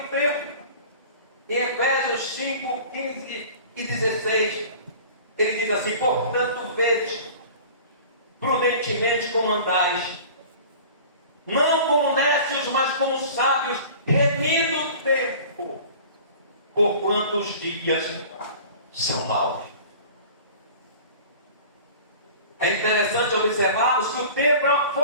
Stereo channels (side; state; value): both; inverted; correlation -0.42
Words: tempo. Em Efésios 5, 15 e 16, ele diz assim: portanto, vede prudentemente como andais, não como necios, mas como sábios, remindo o tempo, porquanto os dias são maus. É interessante observarmos que o tempo é uma